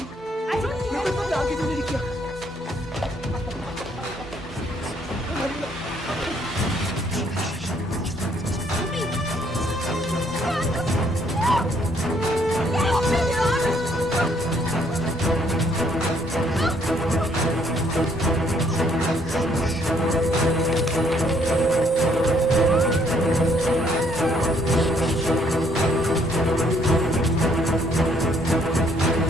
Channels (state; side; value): normal; both; correlation 0.67